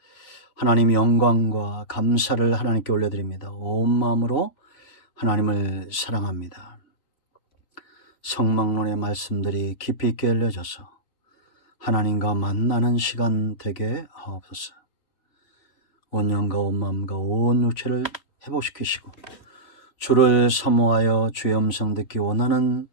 하나님 영광과 감사를 하나님께 올려드립니다. 온 마음으로 하나님을 사랑합니다. 성막론의 말씀들이 깊이 있게 알려져서 하나님과 만나는 시간 되게 하옵소서. 온 영과 온 마음과 온 육체를 회복시키시고 주를 사모하여 주의 음성 듣기 원하는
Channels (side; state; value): right; late; 3.4 ms